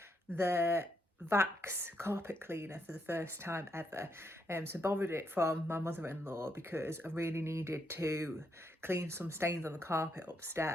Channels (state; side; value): normal; both; correlation 0.78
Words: the Vax carpet cleaner for the first time ever. So borrowed it from my mother-in-law because I really needed to clean some stains on the carpet